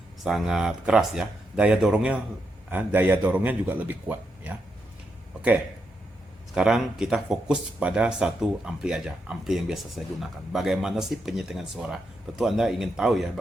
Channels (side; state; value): both; normal; correlation 0.82